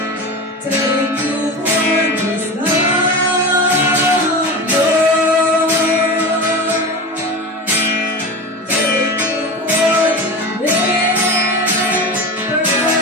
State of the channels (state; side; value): normal; both; correlation 0.27